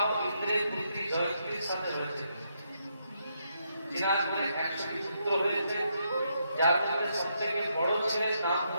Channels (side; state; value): both; inverted; correlation -0.78